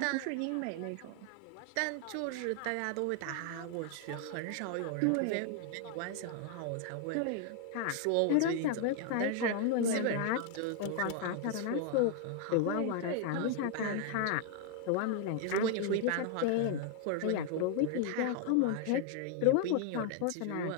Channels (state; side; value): different; both; correlation 0.00